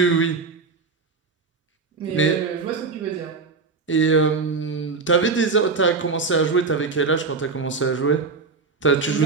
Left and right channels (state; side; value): quieter; left; 4.5 dB